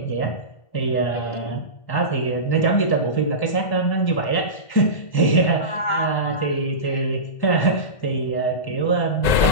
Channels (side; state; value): right; late; 1.9 ms